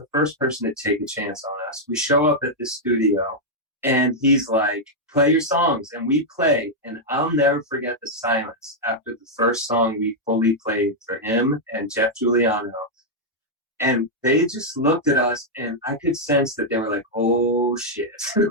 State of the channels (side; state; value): both; normal; correlation -0.03